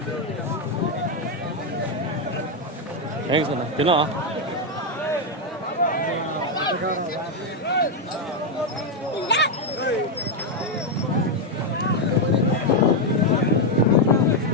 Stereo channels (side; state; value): both; normal; correlation 0.03